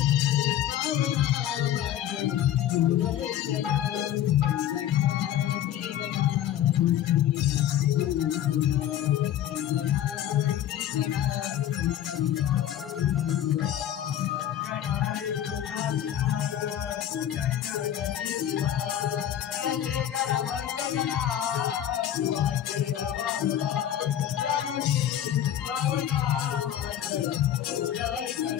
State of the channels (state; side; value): quieter; right; 11.1 dB